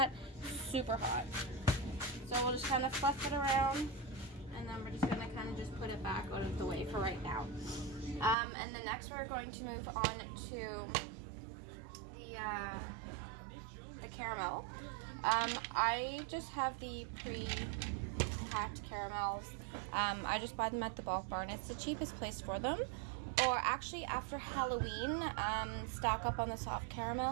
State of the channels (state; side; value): drops out; left; at 8.3 s